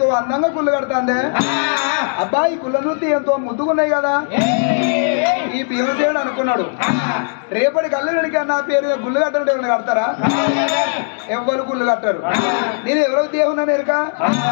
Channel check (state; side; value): silent; right; 64 dB below the other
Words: అందంగా గుళ్ళు కడతాండే, అబ్బా ఈ గుళ్ళ చూస్తే ఎంతో ముద్దుకున్నాయి కదా. ఈ భీమసేనుడు అనుకున్నాడు, రేపటి కళ్ళు వెనక నా పేరు గుళ్ళు కట్టడం ఎవరైనా కడతారా? ఎవ్వరు గుళ్ళు కట్టారు. నేను ఎవరో దేవున్నాను ఎరుక